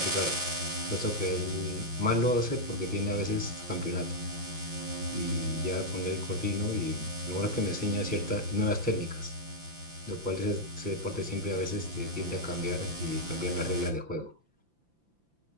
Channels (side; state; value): left; late; 5.9 ms